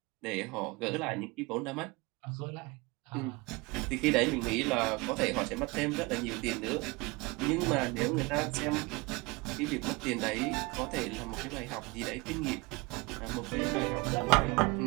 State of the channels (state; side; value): quieter; left; 25.1 dB